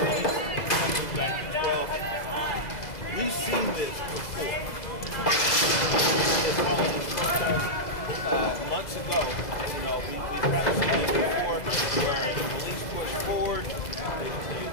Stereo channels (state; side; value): late; right; 2.0 ms